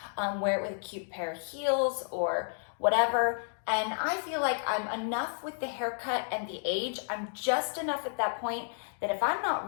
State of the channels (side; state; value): right; silent; digital silence